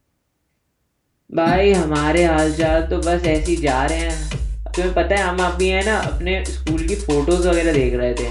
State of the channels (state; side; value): identical; both; correlation 1.00